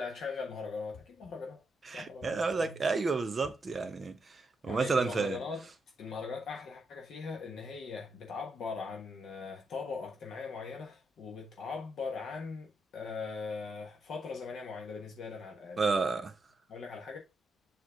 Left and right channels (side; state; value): both; normal; correlation 0.81